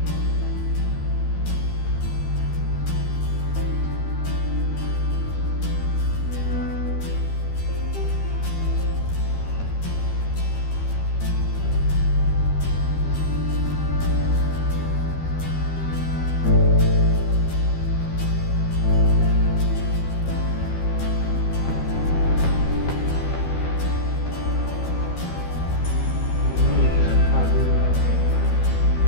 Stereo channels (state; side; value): late; right; 13 ms